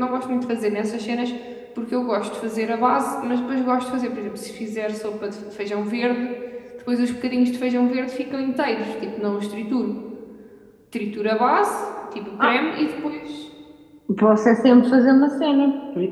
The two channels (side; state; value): both; identical; correlation 1.00